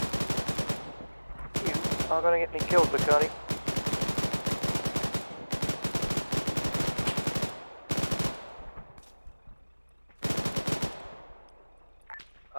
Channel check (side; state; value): both; inverted; correlation -1.00